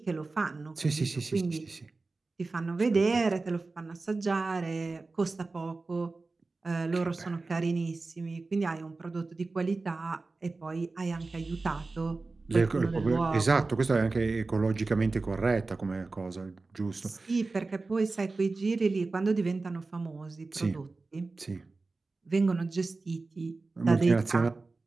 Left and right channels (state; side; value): quieter; left; 3.6 dB